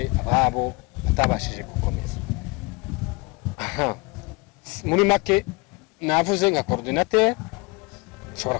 ababo batabashije gukomeza. Muri make navuze nka coordinateur, shobora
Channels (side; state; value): right; quieter; 26.8 dB